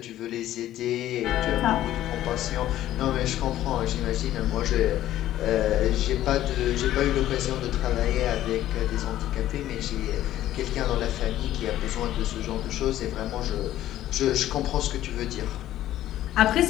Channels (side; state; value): right; quieter; 13.3 dB